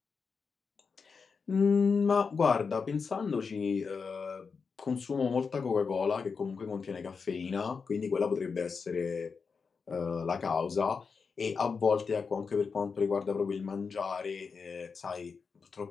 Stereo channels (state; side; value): quieter; right; 5.3 dB